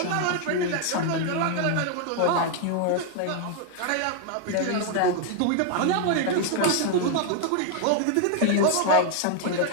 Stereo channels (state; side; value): different; both; correlation 0.00